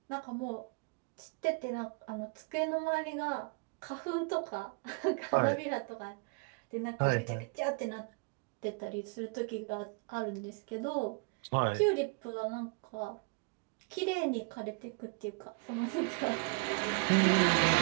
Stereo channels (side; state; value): left; quieter; 32.7 dB